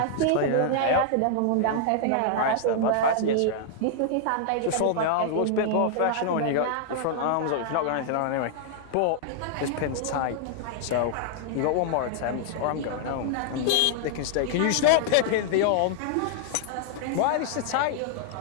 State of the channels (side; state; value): both; different; correlation 0.00